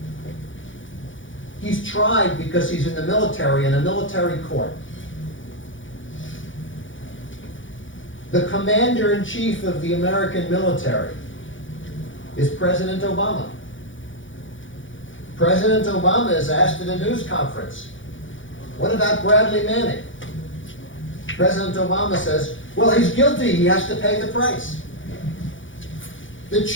He's tried because he's in the military, in a military court. The commander-in-chief of the American military is President Obama. President Obama is asked at a news conference, what about Bradley Manning? President Obama says, well, he's guilty, he has to pay the price. The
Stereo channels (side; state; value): right; late; 0.56 ms